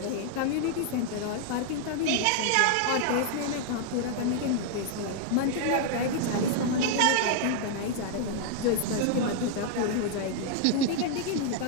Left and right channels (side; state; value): both; different; correlation 0.00